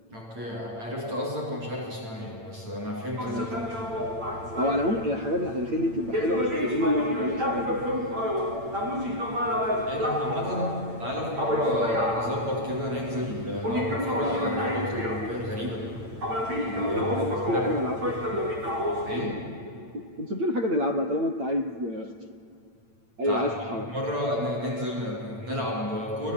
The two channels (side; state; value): left; late; 8.8 ms